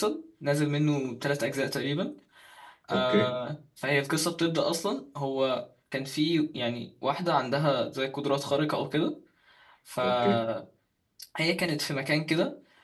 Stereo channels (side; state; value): both; identical; correlation 1.00